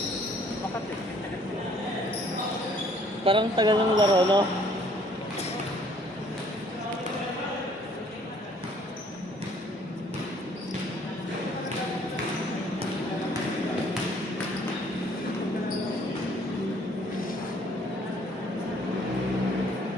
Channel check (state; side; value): normal; both; correlation 0.60